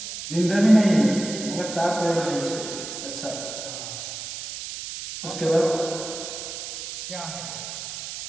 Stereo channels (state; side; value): noise; right; hiss, 8 dB below the sound